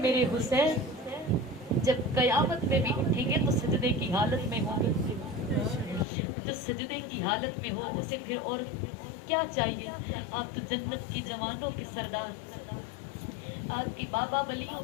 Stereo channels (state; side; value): drops out; right; at 6.1 s